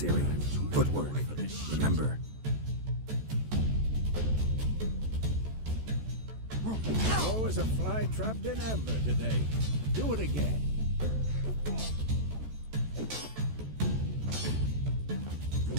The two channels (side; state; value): left; late; 14 ms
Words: Footwork. Remember. Oh, as a fly trapped in amber today. Do it again.